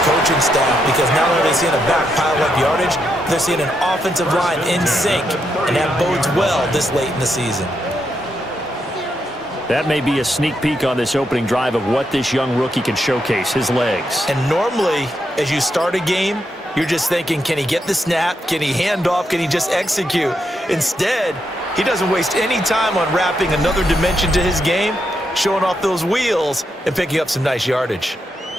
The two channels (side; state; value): both; normal; correlation 0.81